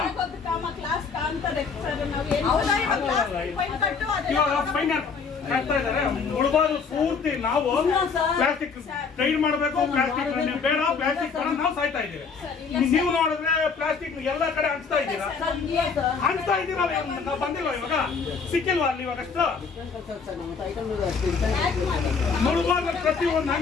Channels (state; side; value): quieter; right; 5.4 dB